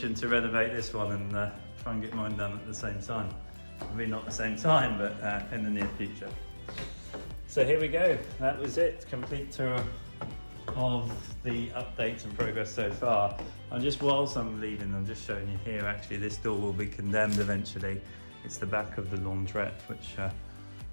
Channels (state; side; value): inverted; both; correlation -1.00